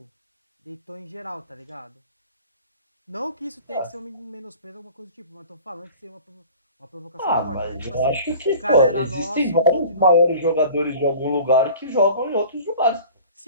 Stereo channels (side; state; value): both; inverted; correlation -0.44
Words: deitou em geral, tá ligado? Não que isso tenha que ser um menosprezo, alguma coisa do tipo, mas tô falando que seria uma provocação Ah, forte, né? mas Tipo eu assim, acho o que, cara pô, era existem nosso, vários continua maiores ainda. jogadores de algum lugar que jogam em outros lugares.